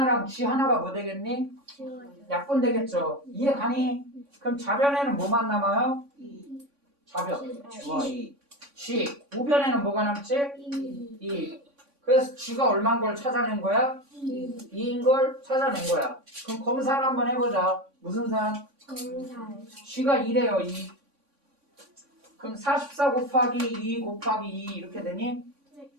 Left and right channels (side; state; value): left; late; 3.5 ms